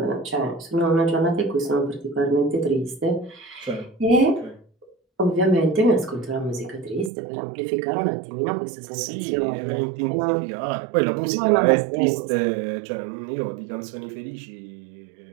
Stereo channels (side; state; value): left; drops out; at 7.1 s